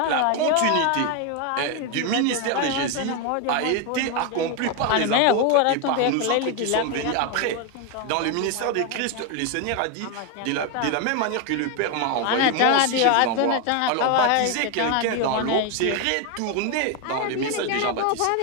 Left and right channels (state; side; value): different; both; correlation 0.02